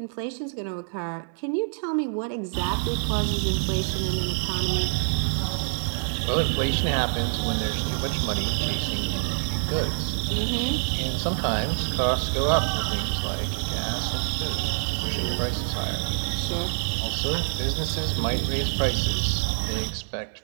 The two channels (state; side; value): silent; left; digital silence